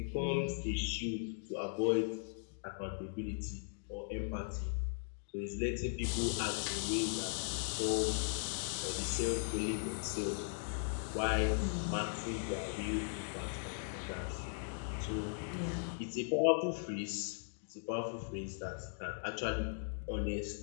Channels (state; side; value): silent; right; digital silence